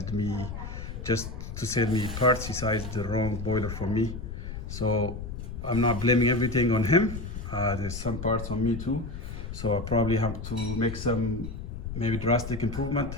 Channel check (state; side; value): noise; left; rumble, 7 dB below the sound